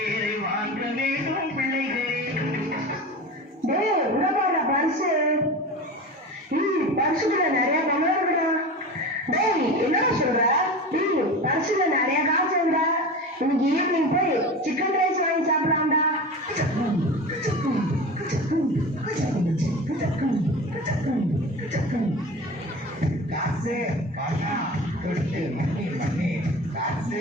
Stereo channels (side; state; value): both; normal; correlation 0.31